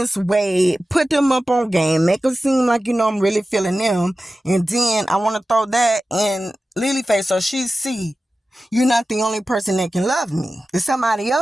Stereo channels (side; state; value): both; normal; correlation 0.94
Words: way, put them up on game, make them seem like, I'm really feeling them. And then I want to throw that in Lily face so she see you're not the only person that can love me. There's somebody